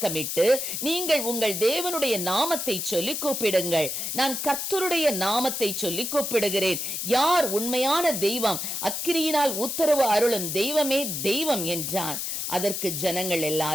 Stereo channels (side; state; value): left; noise; hiss, 3 dB below the sound